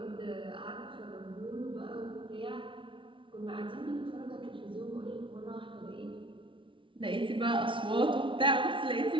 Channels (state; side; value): late; left; 0.25 ms